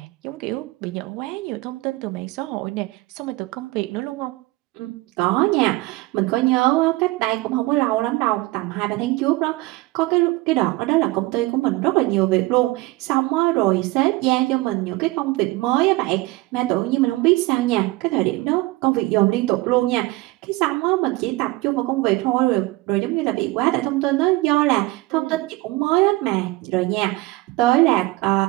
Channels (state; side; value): quieter; left; 20.7 dB